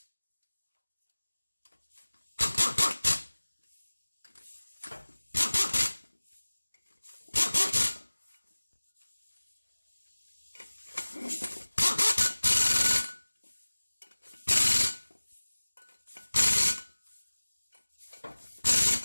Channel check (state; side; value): inverted; both; correlation -1.00